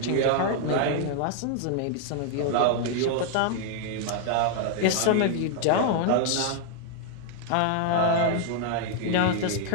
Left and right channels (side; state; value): both; different; correlation 0.00